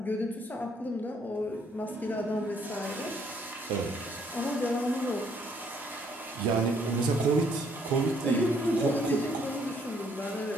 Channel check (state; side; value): normal; both; correlation 0.67